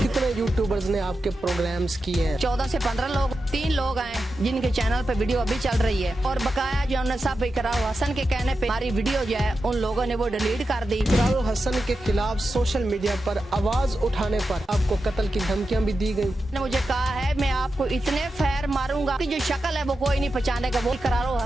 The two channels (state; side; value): normal; both; correlation 0.90